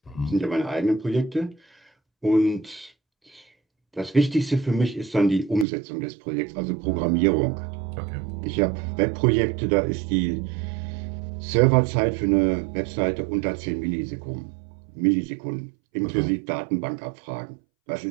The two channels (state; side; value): drops out; left; at 5.7 s